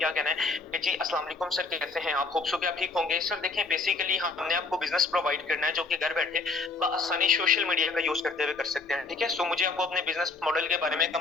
कहना है कि जी अस्सलाम वालेकुम सर, कैसे हैं आप? होप सो कि आप ठीक होंगे। सर देखें, बेसिकली हमने आपको बिज़नेस प्रोवाइड करना है जो कि घर बैठे बआसानी सोशल मीडिया का यूज़ करते हुए कर सकते हैं, ठीक है? सो मुझे आपको अपने बिज़नेस मॉडल के बारे में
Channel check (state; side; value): quieter; right; 3.9 dB